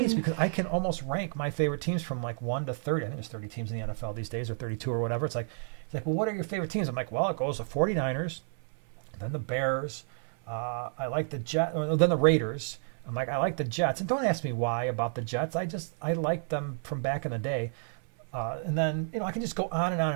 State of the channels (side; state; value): left; silent; 56 dB below the other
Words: because I can almost rank my favorite teams from like 1 to 30. I think there's 30 teams in the NFL these days, or 32 or whatever. He's like, well, what are your favorite teams? I'm like, well, it goes the 49ers, then the Bears. I like the Jets, then the Raiders. I'm like, I like the Jets. And don't ask me why about the Jets. I like them from back in the day. And then, I can just go on and on